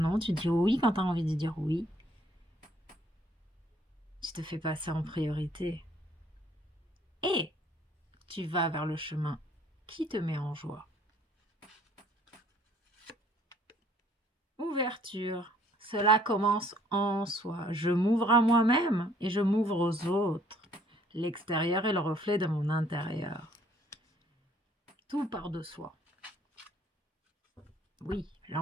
tu dis oui quand tu as envie de dire oui. Tu te fais passer en priorité. Et tu vas vers le chemin qui te met en joie. Ouverture. Cela commence en soi. Je m'ouvre à moi-même et je m'ouvre aux autres. L'extérieur est le reflet de mon intérieur. Tout part de soi. Oui,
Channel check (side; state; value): both; normal; correlation 0.61